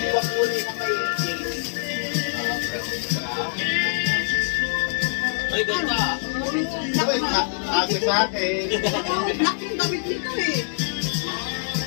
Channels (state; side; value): silent; right; 59 dB below the other